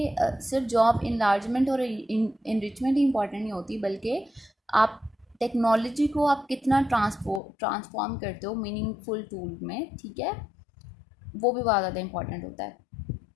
सिर्फ जॉब इनलार्जमेंट और इनरिचमेंट ही इंपॉर्टेंट नहीं होती, बल्कि आप टेक्नोलॉजी को आप कितना ट्रांसफॉर्म करते हो मीनिंगफुल टूल में। ठीक है। वो भी बहुत ज़्यादा इंपॉर्टेंट होता है।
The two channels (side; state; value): right; drops out; at 7.4 s